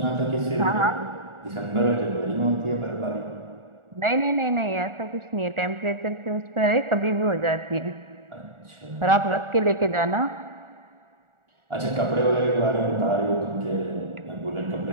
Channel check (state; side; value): late; left; 1.4 ms